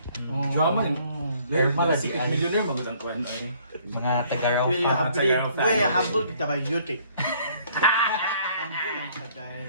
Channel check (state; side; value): inverted; both; correlation -0.61